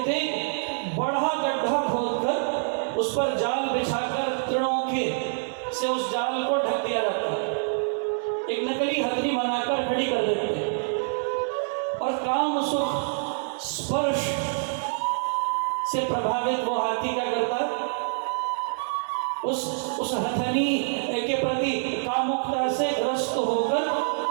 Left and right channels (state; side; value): silent; left; 61 dB below the other